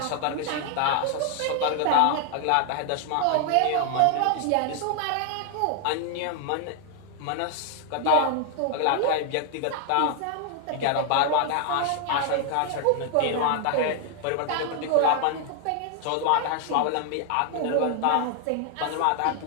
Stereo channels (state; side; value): different; both; correlation 0.00